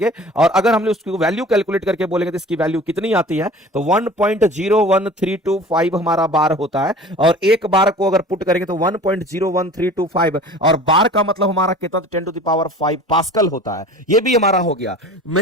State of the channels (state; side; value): normal; both; correlation 0.42